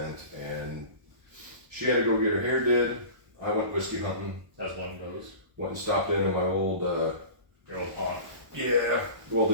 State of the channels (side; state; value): left; late; 1.0 ms